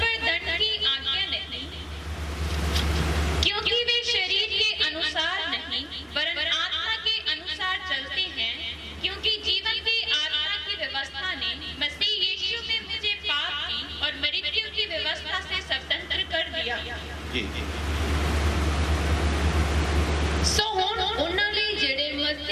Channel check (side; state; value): both; identical; correlation 1.00